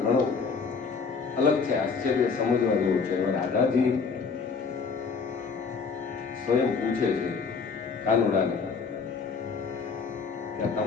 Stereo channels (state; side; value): quieter; right; 5.2 dB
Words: ઘણો અલગ છે, આશ્ચર્ય સમજવા જેવું છે. રાધાજી સ્વયં પૂછે છે કાનુડાને કે